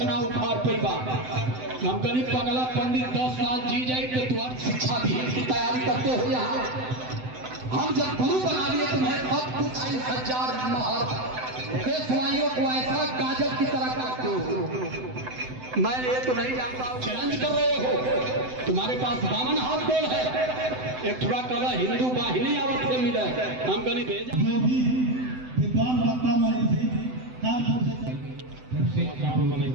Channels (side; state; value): left; late; 7.9 ms